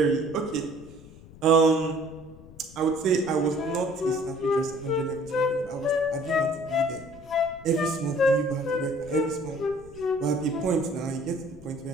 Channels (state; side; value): noise; left; rumble, 20 dB below the sound